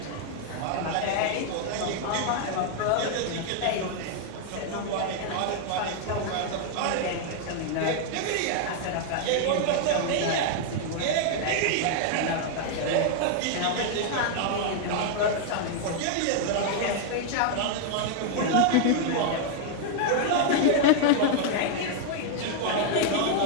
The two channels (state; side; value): different; both; correlation 0.00